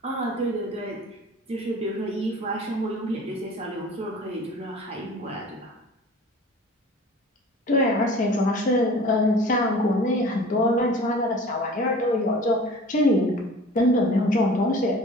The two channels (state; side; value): normal; both; correlation 0.43